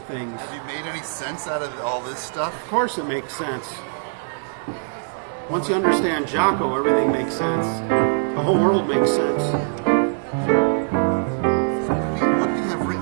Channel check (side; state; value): left; silent; digital silence